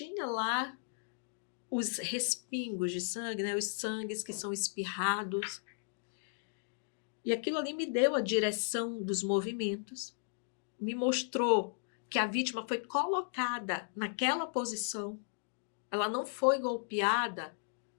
lá os respingos de sangue, né? Os sangues que são espirrados. E aquilo ali me deu a direção dos movimentos, me mostrou que a vítima foi colocada naquela posição. Ela não foi golpeada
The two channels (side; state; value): right; silent; digital silence